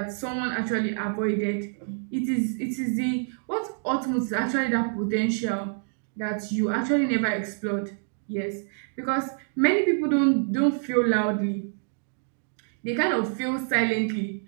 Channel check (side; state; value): left; silent; digital silence